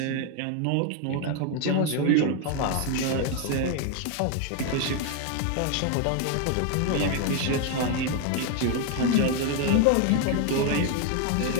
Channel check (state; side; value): different; both; correlation 0.01